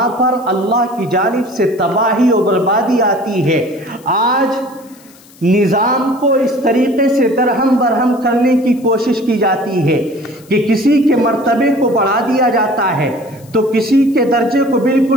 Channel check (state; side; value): noise; left; hiss, 26 dB below the sound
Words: پر اللہ کی جانب سے تباہی اور بربادی آتی ہے۔ آج نظام کو اس طریقے سے درہم برہم کرنے کی کوشش کی جاتی ہے کہ کسی کے مرتبے کو بڑھا دیا جاتا ہے تو کسی کے درجے کو